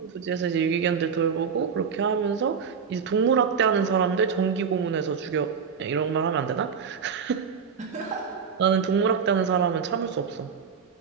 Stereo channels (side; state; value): left; quieter; 6.4 dB